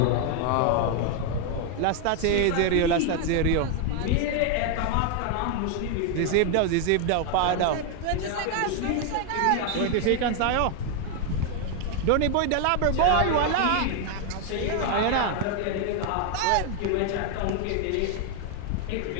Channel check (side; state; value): both; different; correlation 0.01